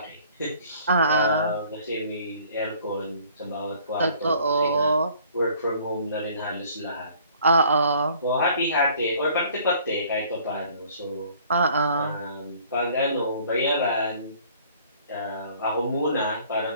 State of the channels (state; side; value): inverted; both; correlation -0.55